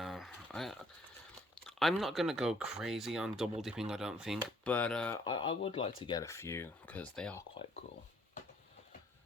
I'm not going to go crazy on double dipping, I don't think, but I would like to get a few, because they are quite cool.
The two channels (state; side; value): normal; both; correlation 0.63